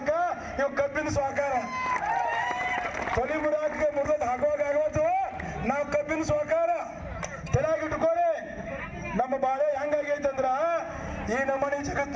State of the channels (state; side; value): identical; both; correlation 1.00